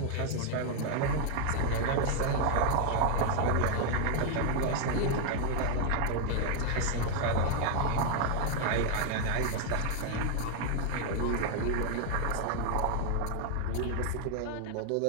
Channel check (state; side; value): different; both; correlation 0.00